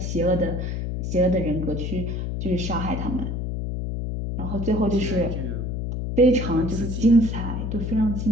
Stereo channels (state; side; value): noise; left; hum, 3 dB below the sound